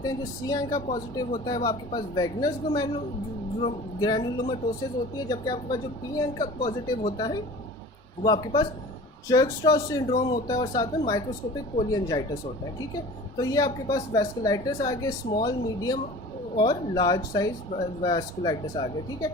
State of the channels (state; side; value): normal; both; correlation 0.41